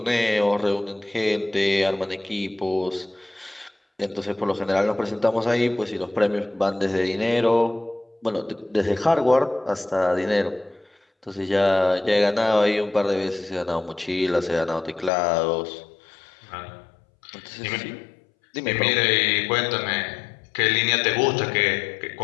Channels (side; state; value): right; drops out; at 15.1 s